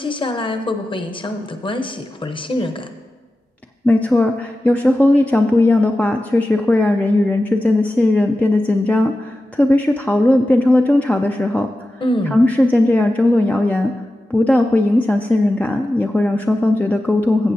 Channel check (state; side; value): normal; both; correlation 0.93